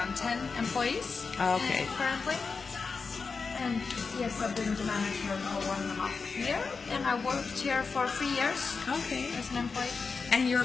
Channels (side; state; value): right; quieter; 4.8 dB